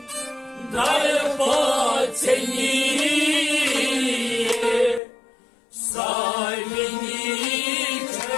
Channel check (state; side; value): drops out; right; at 5.0 s